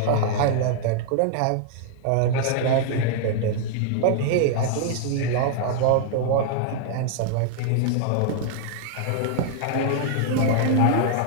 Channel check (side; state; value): both; different; correlation -0.01